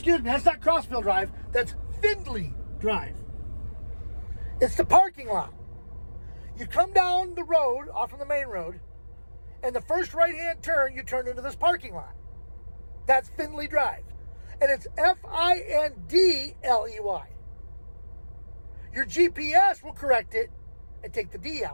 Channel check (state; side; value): inverted; both; correlation -1.00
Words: me, that's not Crossville Drive. That's Findlay Drive. It's the parking lot. You come down the road, off from the main road, and the first right-hand turn, you turn into this parking lot. That's Findlay Drive. And it's Findley. Your GPS will correct it and take the D